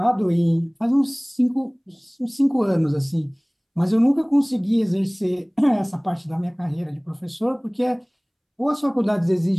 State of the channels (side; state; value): both; identical; correlation 1.00